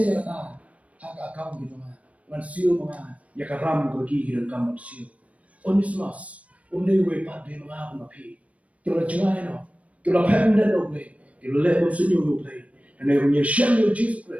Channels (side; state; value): left; late; 0.066 ms